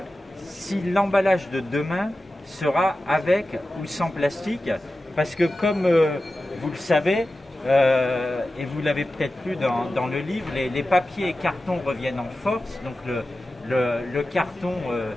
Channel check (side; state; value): both; normal; correlation 0.94